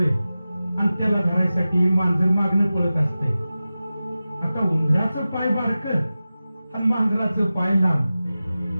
आणि त्याला धरायसाठी मांजर मागणं पळत असतंय. आता उंदराचं पाय बारकं आणि मांजराचं पाय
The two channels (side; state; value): both; inverted; correlation -0.95